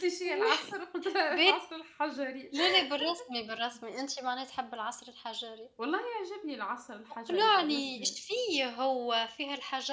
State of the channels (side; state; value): both; identical; correlation 1.00